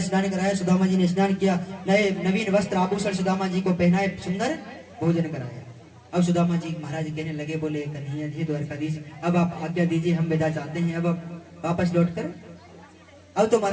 स्नान कराया। सुदामा जी ने स्नान किया, नए नवीन वस्त्र आभूषण सुदामा जी को पहनाए, सुंदर भोजन कराया। अब सुदामा जी महाराज कहने लगे, बोले कन्हैया जी द्वारकाधीश, अब आप आज्ञा दीजिए, हम विदा चाहते हैं अब वापस लौट कर। अब तो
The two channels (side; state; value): both; identical; correlation 1.00